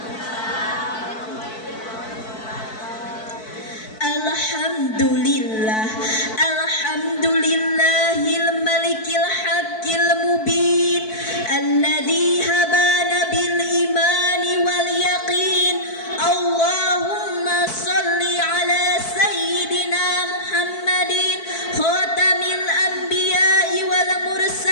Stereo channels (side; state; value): right; late; 4.6 ms